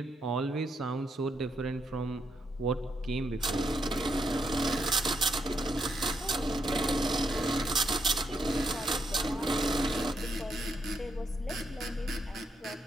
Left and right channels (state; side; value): normal; both; correlation 0.79